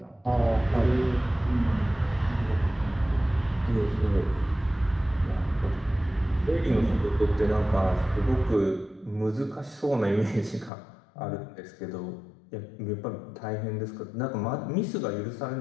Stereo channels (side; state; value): right; drops out; at 10.7 s